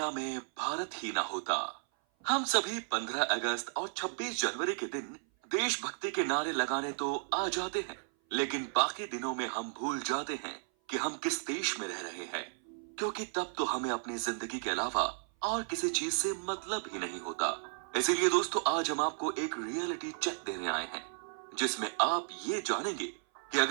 में भारत ही ना होता? हम सभी 15 अगस्त और 26 जनवरी के दिन देशभक्ति के नारे लगाने तो आ जाते हैं, लेकिन बाकी दिनों में हम भूल जाते हैं कि हम किस देश में रह रहे हैं, क्योंकि तब तो हमें अपनी जिंदगी के अलावा और किसी चीज से मतलब ही नहीं होता। इसीलिए दोस्तों, आज हम आपको एक रियलिटी चेक देने आए हैं, जिसमें आप ये जानेंगे कि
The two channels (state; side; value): silent; left; 55 dB below the other